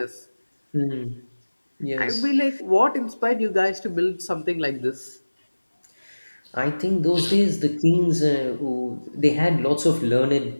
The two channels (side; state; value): both; inverted; correlation -1.00